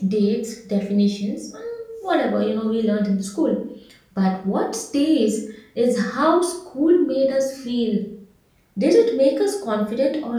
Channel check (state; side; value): identical; both; correlation 1.00